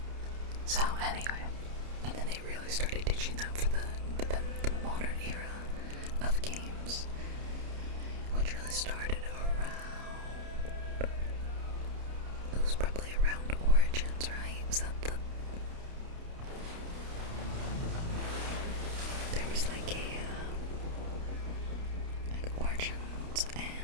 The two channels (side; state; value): left; late; 29 ms